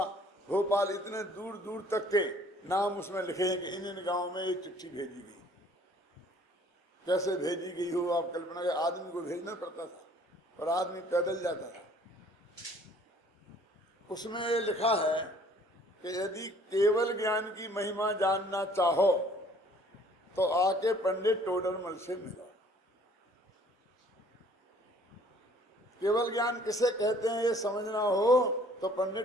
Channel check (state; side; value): normal; both; correlation 0.56